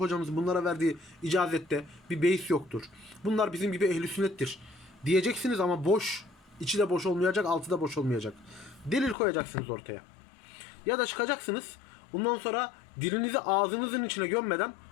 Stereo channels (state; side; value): drops out; right; at 9.2 s